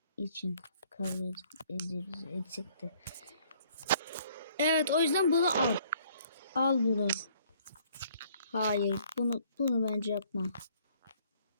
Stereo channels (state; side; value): inverted; both; correlation -0.62